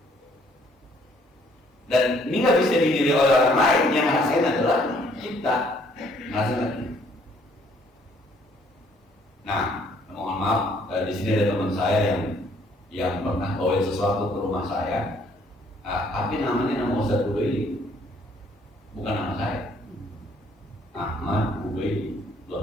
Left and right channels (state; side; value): normal; both; correlation 0.63